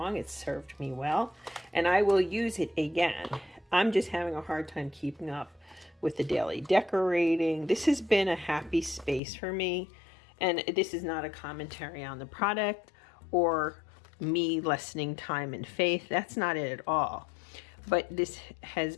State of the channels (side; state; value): right; drops out; at 9.2 s